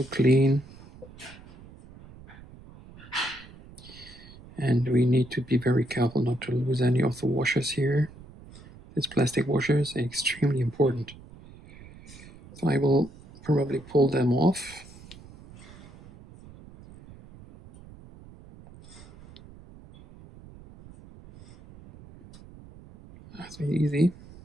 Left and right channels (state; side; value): noise; right; rumble, 20 dB below the sound